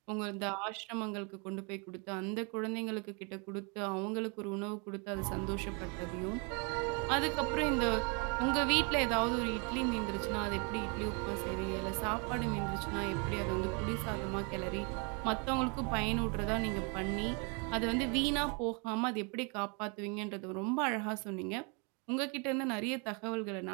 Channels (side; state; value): left; quieter; 34.1 dB